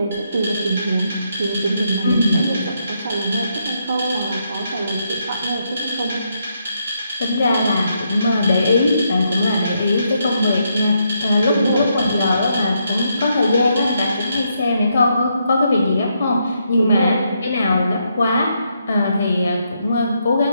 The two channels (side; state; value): both; inverted; correlation -0.78